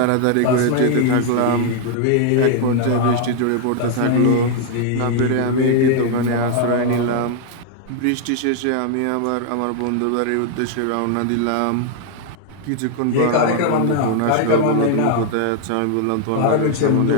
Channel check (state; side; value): different; both; correlation 0.00